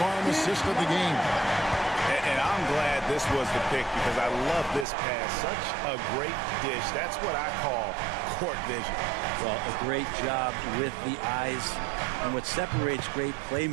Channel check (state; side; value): drops out; left; at 4.9 s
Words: assist of the game. And I'm glad this was the pick because I love this pass. Such a great dish. That's what I call court vision. Well, a great job with the eyes. And what separates great